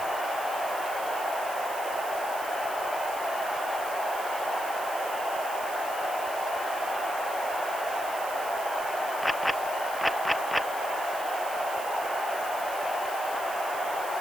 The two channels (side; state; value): right; noise; hiss, 12 dB below the sound